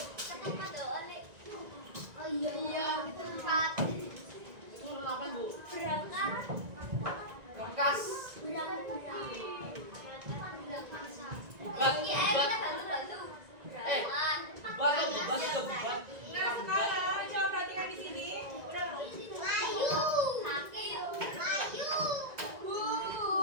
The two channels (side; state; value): left; late; 1.9 ms